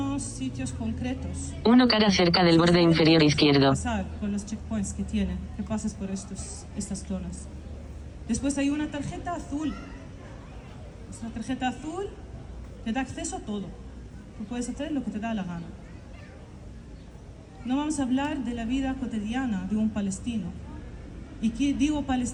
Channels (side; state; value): both; identical; correlation 1.00